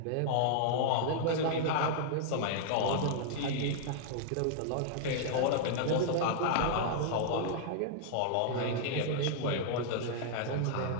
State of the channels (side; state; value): both; different; correlation -0.01